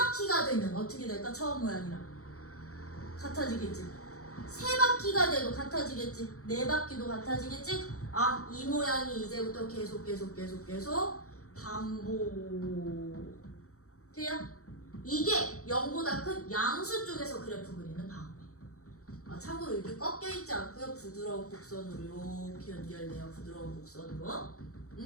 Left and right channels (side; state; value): right; late; 0.65 ms